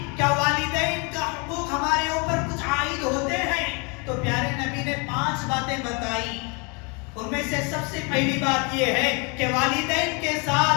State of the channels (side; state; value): right; quieter; 32.1 dB